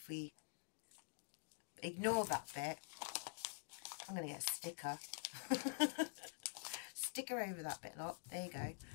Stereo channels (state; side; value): silent; right; digital silence